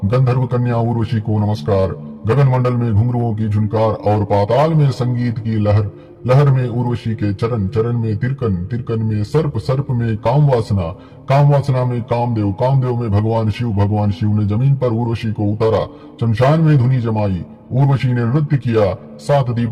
गंधर्व कन्या उर्वशी को नमस्कार। गगन मंडल में घुंघरुओं की झुनकार और पाताल में संगीत की लहर, लहर में उर्वशी के चरण, चरण में तिरकन, तिरकन में सर्प, सर्प में काम वासना, काम वासना में कामदेव, कामदेव में भगवान शिव, भगवान शिव ने जमीन पर उर्वशी को उतारा। शमशान में धुनी जमाई, उर्वशी ने नृत्य किया। सात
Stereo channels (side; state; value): both; identical; correlation 1.00